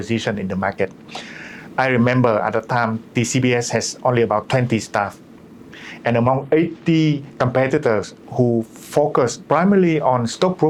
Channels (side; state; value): both; identical; correlation 1.00